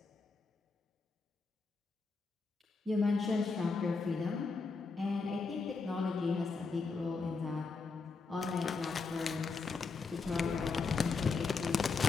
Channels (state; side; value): quieter; right; 4.4 dB